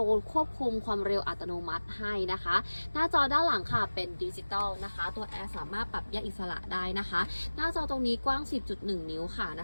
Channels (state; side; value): inverted; both; correlation -1.00